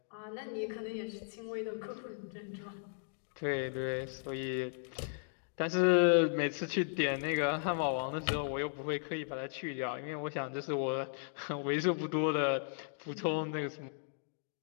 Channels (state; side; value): silent; right; digital silence